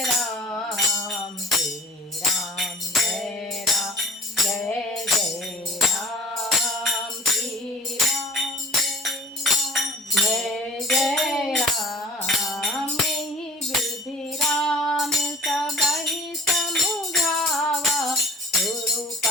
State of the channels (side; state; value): both; normal; correlation 0.48